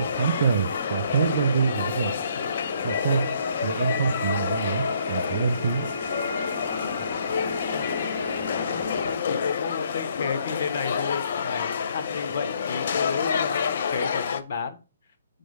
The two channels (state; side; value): inverted; both; correlation -0.67